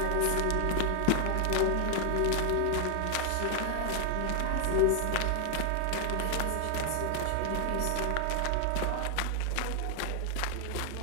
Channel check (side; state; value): both; different; correlation 0.00